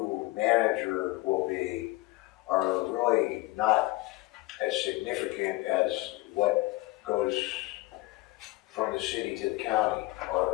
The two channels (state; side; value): quieter; right; 19.9 dB